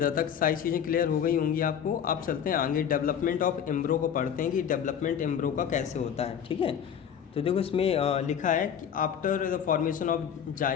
तक सारी चीज़ें क्लियर हो गई होंगी आपको। अब चलते हैं आगे, डेवलपमेंट ऑफ एम्ब्रो को पढ़ते हैं कि डेवलपमेंट एम्ब्रो का कैसे होता है, ठीक है। तो देखो इसमें लिखा है कि after the formation of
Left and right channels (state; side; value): quieter; right; 8.5 dB